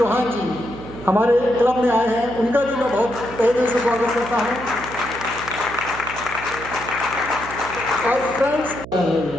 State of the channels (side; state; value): right; noise; hum, 14 dB below the sound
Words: जी हमारे क्लब में आए हैं, उनका भी मैं बहुत तहे दिल से स्वागत करता हूँ। और फ्रेंड्स,